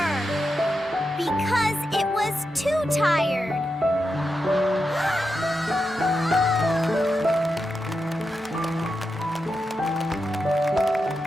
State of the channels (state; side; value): normal; both; correlation 0.88